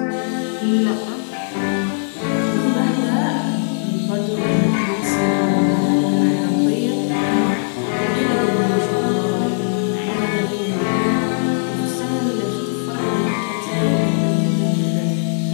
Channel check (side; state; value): right; silent; digital silence